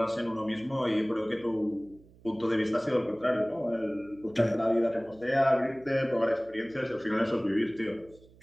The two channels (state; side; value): noise; right; hum, 26 dB below the sound